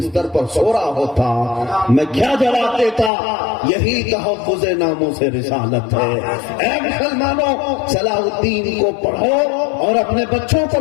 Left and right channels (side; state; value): right; drops out; at 3.1 s